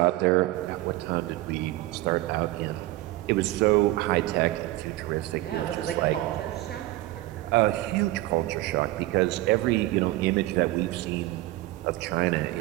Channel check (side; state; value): left; quieter; 17.6 dB